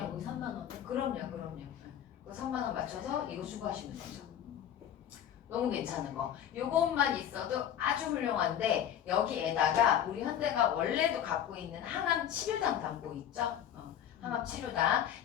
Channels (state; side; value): quieter; right; 10.1 dB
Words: 3만 원. 그럼요. 그 3만 원 맞춰서 이거 추가하시면 되죠. 너무 괜찮은 거. 요것만 있어도 아주 훌륭한데 여기에다가 우리 현대가 원래도 갖고 있는 항암 치료당 담보 있죠? 항암 치료당